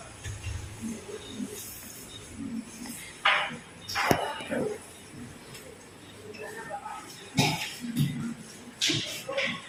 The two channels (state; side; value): identical; both; correlation 1.00